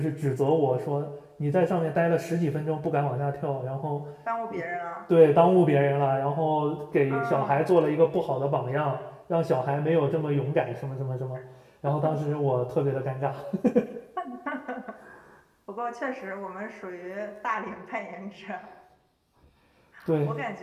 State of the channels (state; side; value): identical; both; correlation 1.00